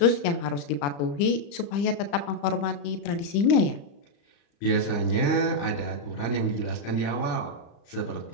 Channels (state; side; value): late; right; 35 ms